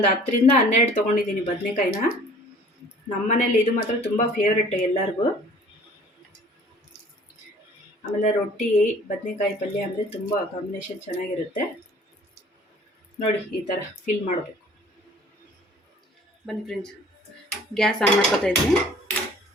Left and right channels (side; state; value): both; normal; correlation 0.50